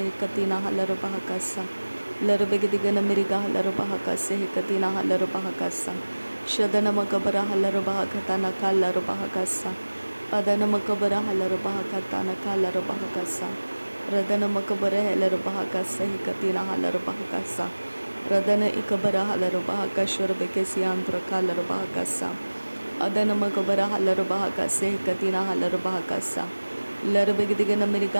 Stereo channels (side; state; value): both; inverted; correlation -1.00